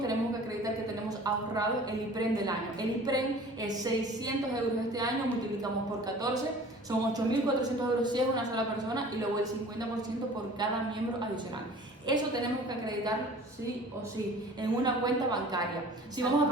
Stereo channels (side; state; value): both; normal; correlation 0.45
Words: que acreditar que tenemos ahorrado el IPREM del año. El IPREM es 600 euros este año, multiplicamos por 14, son 8.400 euros si es una sola persona, y luego el 50% por cada miembro adicional. Eso tenemos que acreditar sí o sí en una cuenta bancaria. Si vamos a